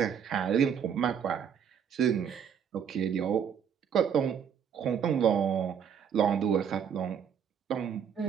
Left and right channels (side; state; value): left; quieter; 7.9 dB